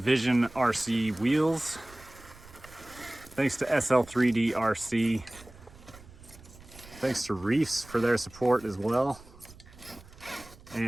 RC Wheels. Thanks to SL3D RC. Thanks to Reefs for their support as well.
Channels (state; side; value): noise; right; rumble, 21 dB below the sound